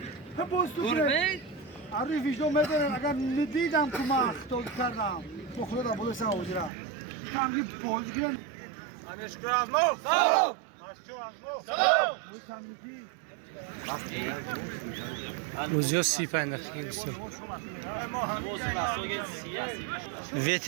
هم باز تو کنه عری ویژدو میدونن اگر ندیدم که من اخطا کردم با خدا را بوده سر آجرا کم یه بازی گیرن شکر از مو سلام سلام روزیا 35 دقیقه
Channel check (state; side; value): drops out; left; at 6.7 s